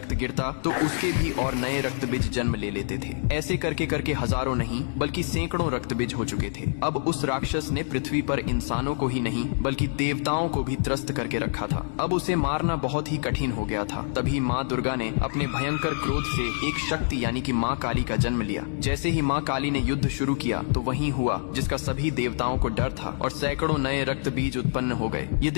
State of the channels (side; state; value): right; silent; digital silence